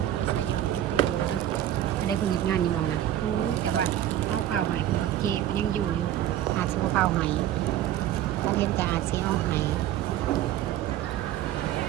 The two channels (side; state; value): left; quieter; 12.2 dB